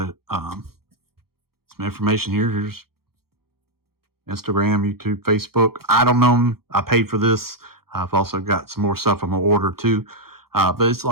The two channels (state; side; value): late; left; 0.94 ms